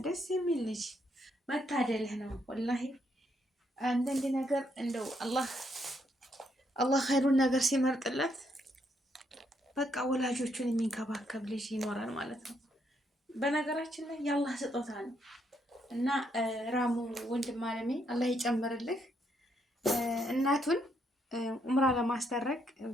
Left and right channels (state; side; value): normal; both; correlation 0.75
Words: ደስ የሚል ልጅ መታደልህ ነው ወላሂ። አንዳንድ ነገር እንደው አላህ ኸይሩን ነገር ሲመርጥለት በቃ ወላጆቹን የሚንከባከብ ልጅ ይኖራል ማለት ነው። በነገራችን ላይ የአላህ ስጦታ ነው እና ራሙ ወንድም አለሜ አላህ ይጨምርልህ። እናቱን ኡምራ ለማስደረግ